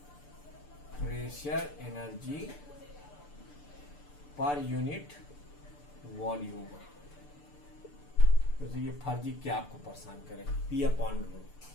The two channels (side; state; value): right; late; 6.8 ms